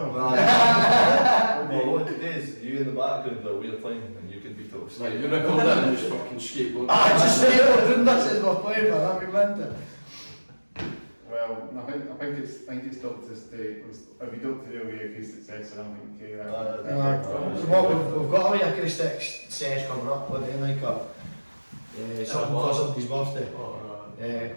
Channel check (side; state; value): both; inverted; correlation -1.00